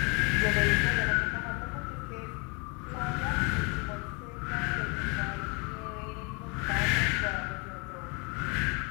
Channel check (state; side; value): quieter; right; 31.2 dB